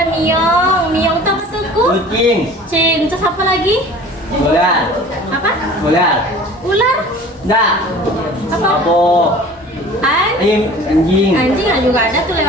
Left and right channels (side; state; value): both; normal; correlation 0.44